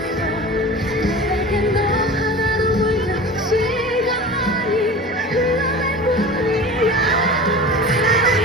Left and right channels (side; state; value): both; normal; correlation 0.35